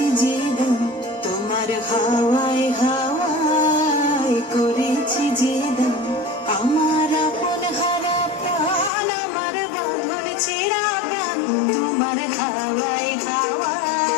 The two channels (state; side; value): drops out; right; at 8.9 s